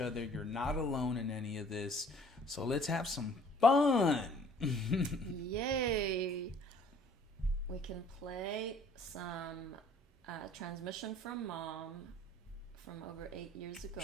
You're not alone in any of this. So let's have some fun. Yay. We can play some transmission from Mom from over 8 years ago.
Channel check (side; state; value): both; normal; correlation 0.55